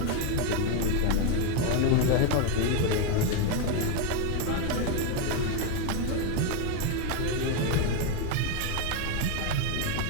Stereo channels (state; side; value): different; both; correlation 0.02